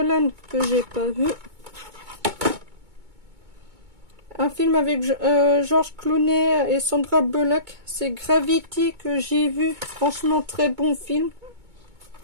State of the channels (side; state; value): left; late; 2.2 ms